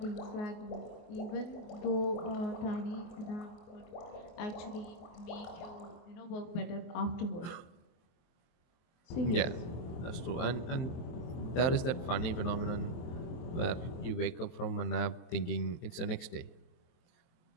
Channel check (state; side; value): late; right; 23 ms